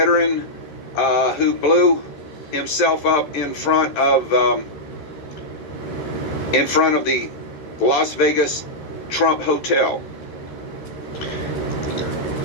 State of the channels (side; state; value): right; late; 13 ms